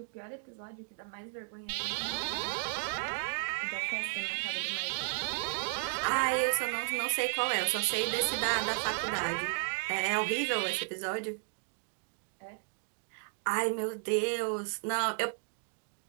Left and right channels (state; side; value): silent; left; 55 dB below the other